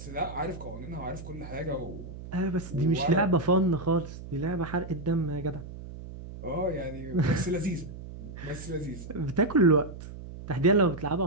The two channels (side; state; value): right; noise; hum, 12 dB below the sound